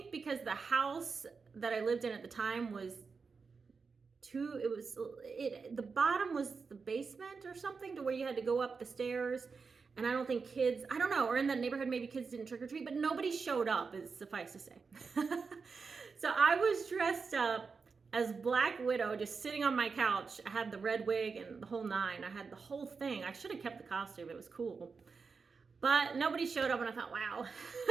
because the house that I lived in at the time was the bottom was the basement or something, to where you had to go up the stairs, and I don't think kids, I don't know, or in that neighborhood maybe kids didn't trick or treat, but nobody showed up, is suffice to say. So I was dressed up as Black Widow, just sitting on my couch. I had the red wig and the whole nine. I had the whole thing. I should have kept the costume. It was cool. But nobody showed up, and I thought, wow,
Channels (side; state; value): left; quieter; 5.0 dB